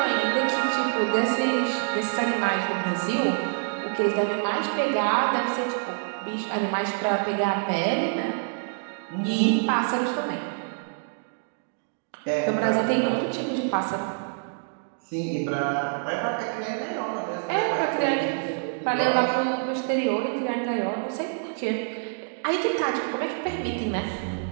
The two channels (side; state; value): left; silent; digital silence